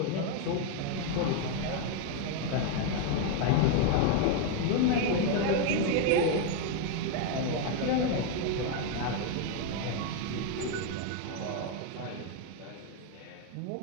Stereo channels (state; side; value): different; both; correlation 0.01